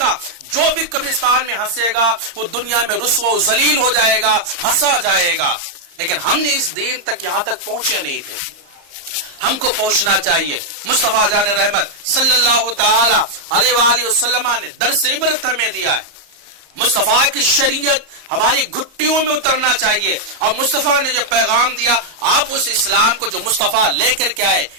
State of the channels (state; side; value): late; left; 34 ms